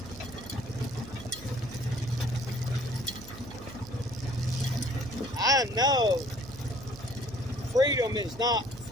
I know freedom is not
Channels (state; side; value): noise; right; hum, 15 dB below the sound